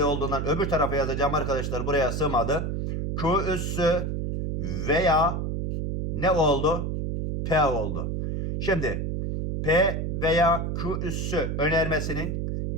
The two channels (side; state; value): right; noise; hum, 2 dB below the sound